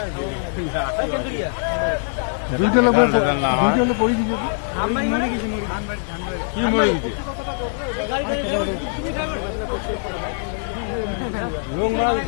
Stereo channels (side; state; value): right; silent; 64 dB below the other